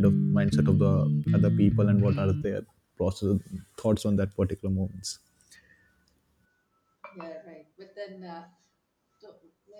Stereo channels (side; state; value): both; identical; correlation 1.00